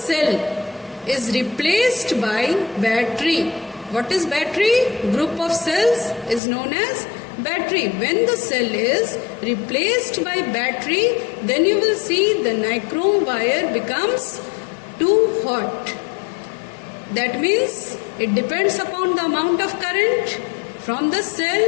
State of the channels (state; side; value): drops out; right; at 6.4 s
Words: is replaced by battery. What is battery? Group of cells is known as battery. When the cell is replaced by battery, then you will see the nichrome wire becomes too hot. That means it depends upon the amount of current. From the cell,